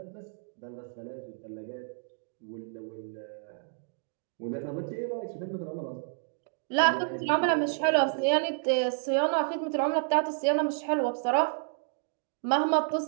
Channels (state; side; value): silent; left; digital silence